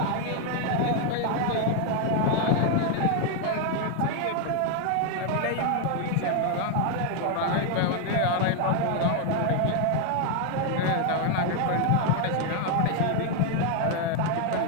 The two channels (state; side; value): different; both; correlation 0.01